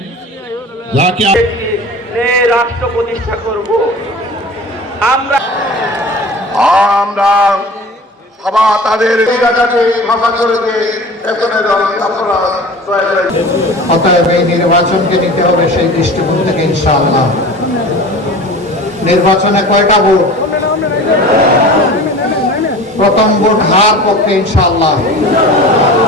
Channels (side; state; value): both; normal; correlation 0.38